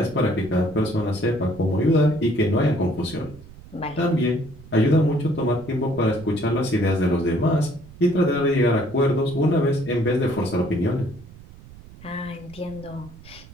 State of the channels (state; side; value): noise; right; rumble, 20 dB below the sound